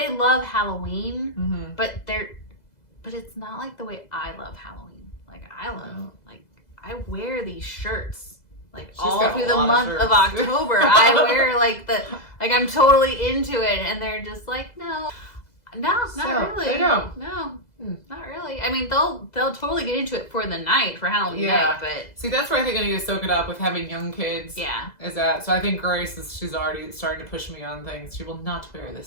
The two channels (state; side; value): late; right; 2.0 ms